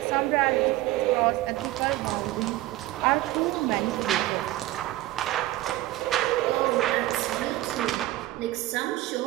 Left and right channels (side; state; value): left; quieter; 16.6 dB